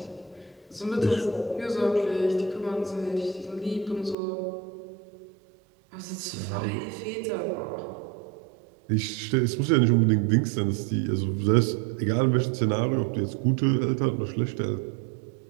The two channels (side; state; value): left; drops out; at 4.2 s